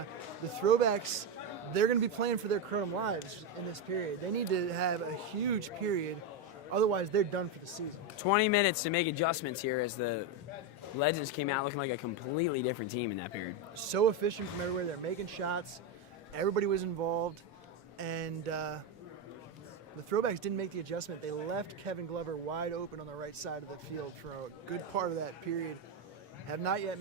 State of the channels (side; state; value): both; normal; correlation 0.09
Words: throwbacks, they're going to be playing for their Kronum lives in this period. They need to have a huge period, otherwise they're done for the season. 20 minutes to make adjustments here as the Legends came out looking like a completely different team in that period. So efficient from everywhere. They're making shots. Everybody was involved. And the throwbacks didn't make the adjustment. They left Kevin Glover wide open on the right side of the field for a good part of that period. Have not yet